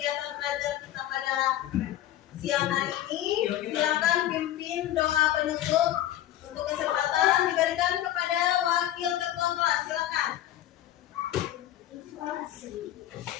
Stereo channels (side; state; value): right; quieter; 13.0 dB